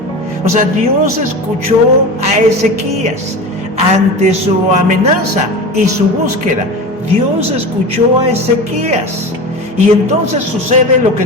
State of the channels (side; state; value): both; normal; correlation 0.29